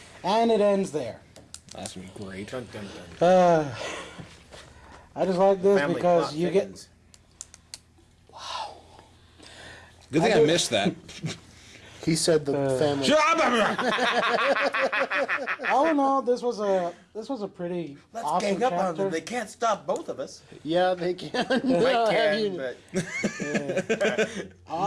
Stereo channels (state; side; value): identical; both; correlation 1.00